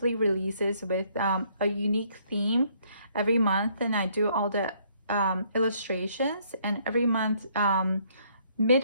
releases with a unique theme every month, and I do all the illustrations. And every month,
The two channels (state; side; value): inverted; both; correlation -0.66